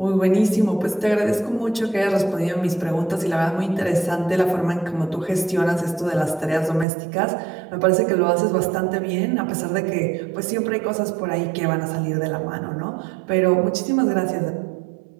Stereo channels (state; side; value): drops out; left; at 6.9 s